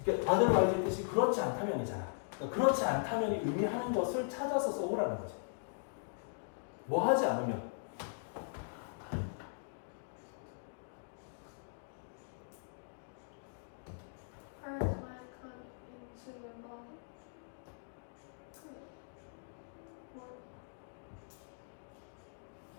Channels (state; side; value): silent; right; digital silence